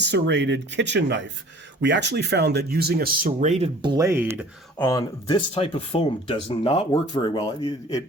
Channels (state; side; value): normal; both; correlation 0.49